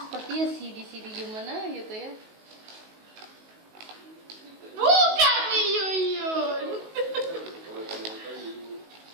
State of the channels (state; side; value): late; left; 19 ms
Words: CD gimana gitu ya. Buka Yuyun.